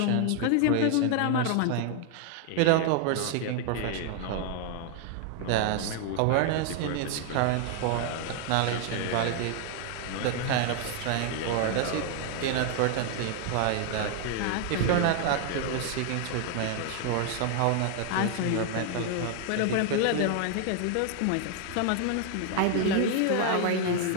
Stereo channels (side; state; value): both; different; correlation 0.00